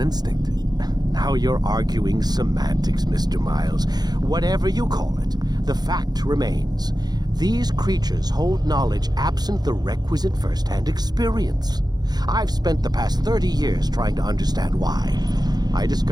Now you're arguing semantics, Mr. Miles. Whatever you call it, the fact remains. These creatures hold knowledge absent the requisite first-hand experience. I've spent the past 30 years trying to understand why. I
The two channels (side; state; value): left; late; 0.19 ms